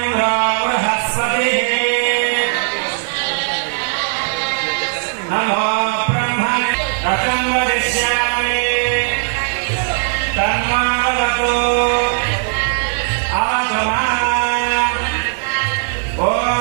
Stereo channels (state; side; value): silent; left; 57 dB below the other